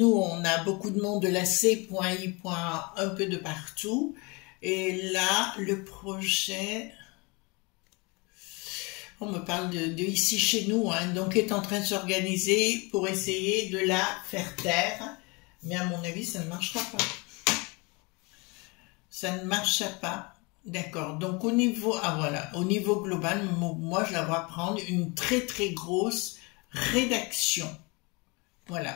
on a beaucoup de monde de la C.I. un peu de partout, et là, le projet... On me parle de ici chez nous, hein, donc est en train de s'organiser pour essayer de la faire taire. Mais à mon avis, ça ne marchera pas. Ça ne marchera pas. D'accord. Donc au niveau, voilà, au niveau global, moi je la vois prendre une très très grosse rédaction.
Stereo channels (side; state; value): right; quieter; 28.2 dB